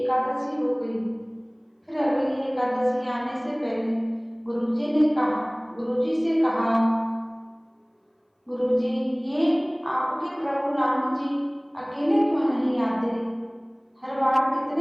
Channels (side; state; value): both; identical; correlation 1.00